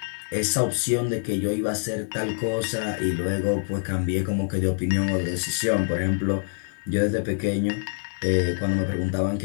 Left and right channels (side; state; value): right; silent; 61 dB below the other